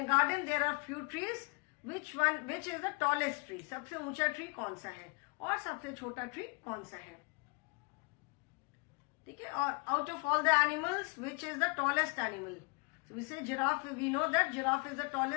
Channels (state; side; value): quieter; right; 30.9 dB